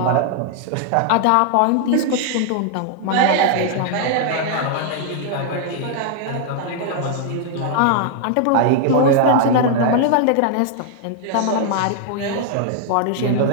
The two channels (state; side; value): different; both; correlation 0.00